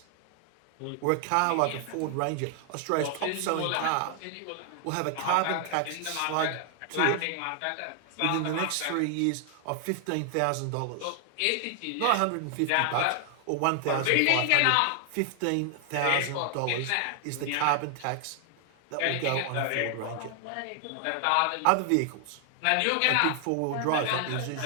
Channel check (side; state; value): both; different; correlation 0.00